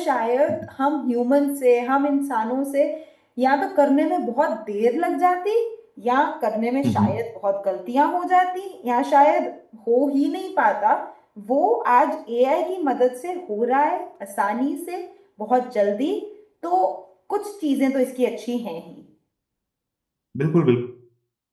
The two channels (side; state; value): both; identical; correlation 1.00